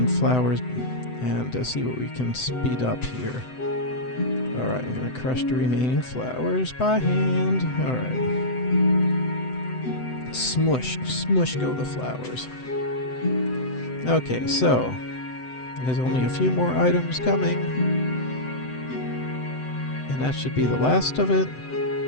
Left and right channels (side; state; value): right; late; 7.9 ms